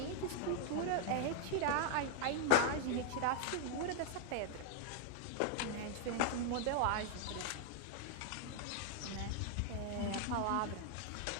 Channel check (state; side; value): different; both; correlation 0.00